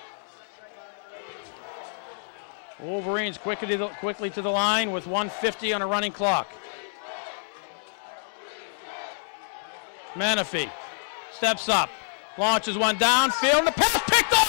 Wolverines quickly to the line with 1:50 on a running clock. Menifee steps up, launches one downfield, and the pass picked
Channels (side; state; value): right; silent; 60 dB below the other